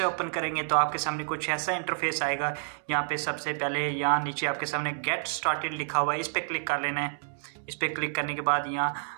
ओपन करेंगे तो आपके सामने कुछ ऐसा इंटरफेस आएगा। यहाँ पे सबसे पहले यहाँ नीचे आपके सामने गेट स्टार्टेड लिखा हुआ है, इस पर क्लिक कर लेना है। इस पर क्लिक करने के बाद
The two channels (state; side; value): silent; left; digital silence